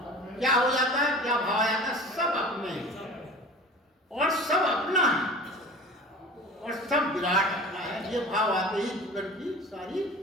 क्या हो जाता है, क्या भाव आ जाता है, सब अपने हैं और सब अपना है और सब विराट अपना है। ये भाव आते ही जीवन की सारी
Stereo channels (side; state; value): both; normal; correlation 0.39